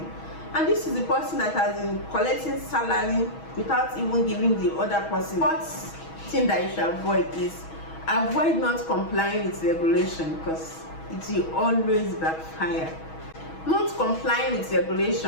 And this is the person that has been collecting salary without even giving the other person. What thing that you should avoid is avoid not complying with regulation, because it will always backfire. Not complying with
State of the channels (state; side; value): late; right; 6.2 ms